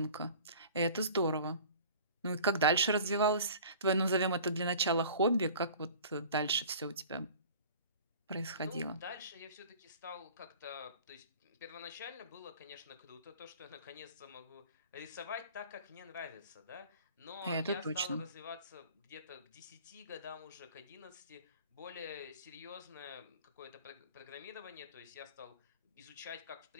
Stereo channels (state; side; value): inverted; both; correlation -0.44